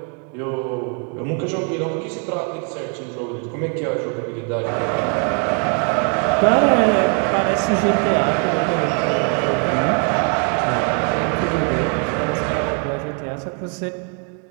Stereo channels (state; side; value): quieter; left; 38.3 dB